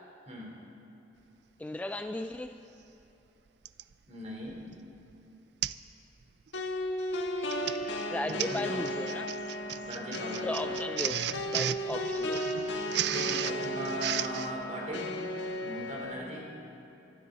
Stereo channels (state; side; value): normal; both; correlation 0.34